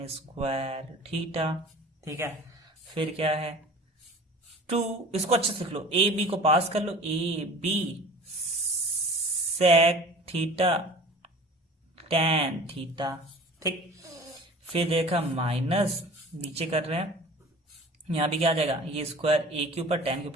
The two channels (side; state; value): both; normal; correlation 0.43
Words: square theta, ठीक है। फिर क्या है 2, इसको अच्छे से लिख लो, ए बी को पास कर लो, A B sec theta tan theta, ठीक। फिर देखा माइनस, नीचे कर रहे हैं, यहां भी क्या आ जाएगा, ये स्क्वायर ए के ऊपर टेन के